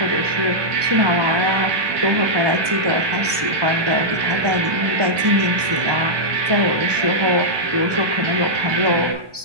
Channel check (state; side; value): late; left; 1.2 ms